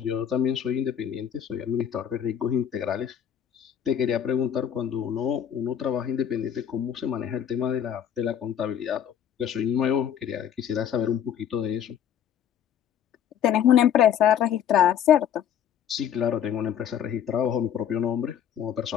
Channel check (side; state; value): right; quieter; 9.3 dB